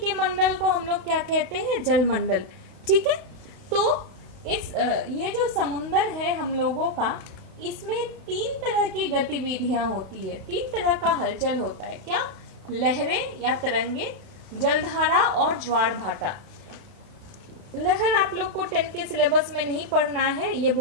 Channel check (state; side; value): late; left; 32 ms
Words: मंडल को हम लोग क्या कहते हैं? जलमंडल। ठीक है, तो इस ये जो समुंदर है हम लोगों का, इसमें 3 तरह की गतिविधियां होती है, 3 तरह का हलचल होता है। क्या? लहरें या तरंगे, जलधारा और ज्वार भाटा। लहर आप लोग को 10 के सिलेबस में नहीं पढ़ना है, ये